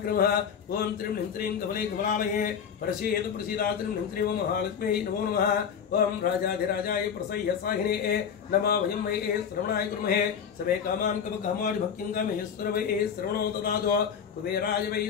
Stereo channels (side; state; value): right; quieter; 7.4 dB